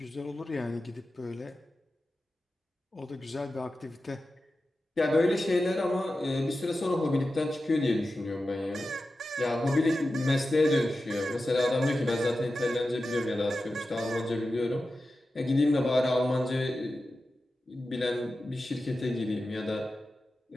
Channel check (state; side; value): normal; both; correlation 0.93